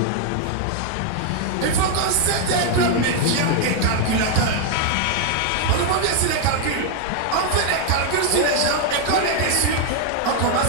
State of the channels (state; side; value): different; both; correlation 0.00